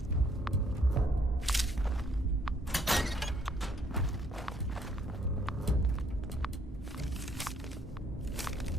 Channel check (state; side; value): normal; both; correlation 0.67